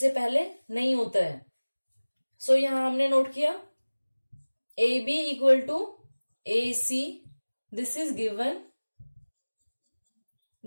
पहले नहीं होता है। सो यहां हमने नोट किया AB equal to AC, this is given.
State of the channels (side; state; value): both; inverted; correlation -1.00